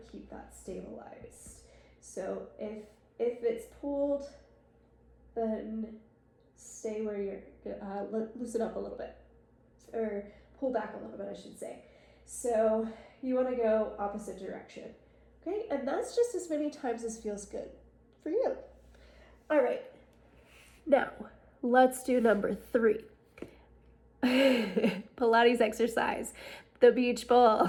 keep that stabilized. So if it's pulled, then stay where you're, loosen up a little bit, or pull back a little bit, I should say. So you want to go opposite direction. Okay, and that's just as many times as feels good for you. All right, now let's do number 3. Pilates exercise, the beach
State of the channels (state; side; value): identical; both; correlation 1.00